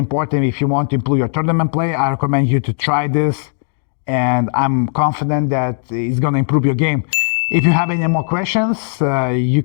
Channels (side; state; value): right; silent; digital silence